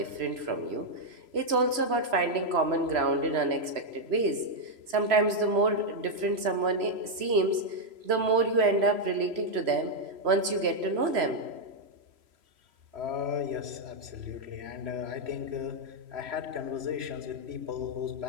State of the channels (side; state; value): left; late; 3.0 ms